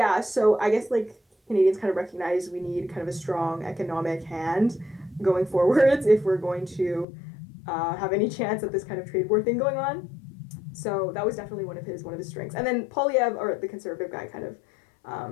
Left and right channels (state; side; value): drops out; right; at 7.1 s